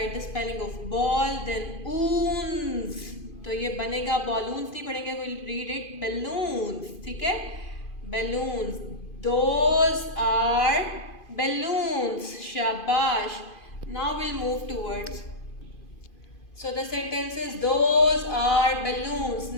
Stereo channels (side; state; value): right; late; 2.5 ms